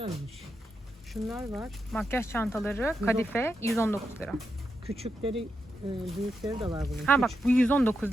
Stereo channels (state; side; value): normal; both; correlation 0.85